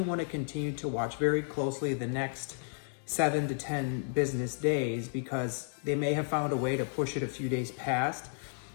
want to continue to watch very closely the next 7 to 10 business days, because they may have found a way to push it a few days past,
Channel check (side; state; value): right; silent; 56 dB below the other